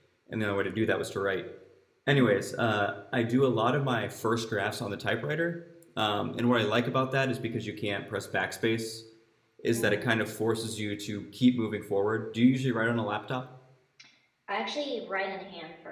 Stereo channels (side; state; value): both; identical; correlation 1.00